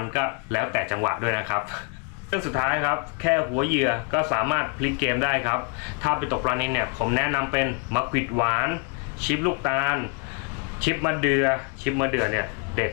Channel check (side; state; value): right; quieter; 30.3 dB